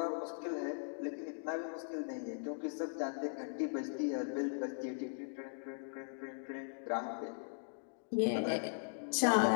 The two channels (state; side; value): silent; right; digital silence